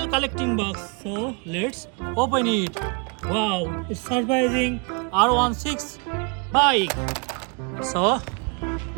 collecting box. So let's open it. Wow, it's surprising R16 bike. So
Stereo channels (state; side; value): quieter; left; 32.3 dB